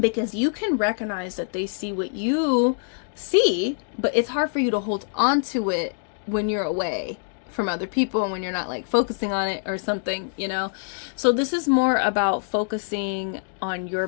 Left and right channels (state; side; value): silent; right; digital silence